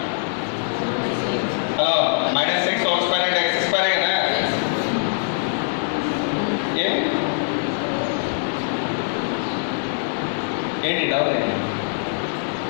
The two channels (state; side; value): silent; right; digital silence